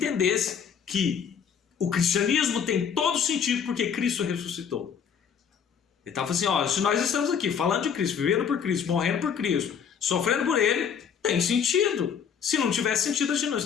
que o cristianismo tem todo sentido porque Cristo ressuscitou. Ele estava assim, ó, se nós estamos aqui falando de Cristo, vivendo por Cristo, morrendo por Cristo, sofrendo por Ele, tem sentido. Se não tivesse sentido, a gente não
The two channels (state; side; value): quieter; right; 7.3 dB